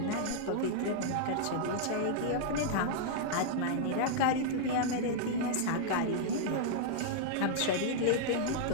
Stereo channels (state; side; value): different; both; correlation -0.01